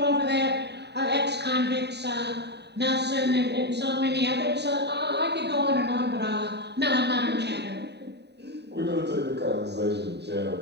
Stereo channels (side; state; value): left; late; 0.49 ms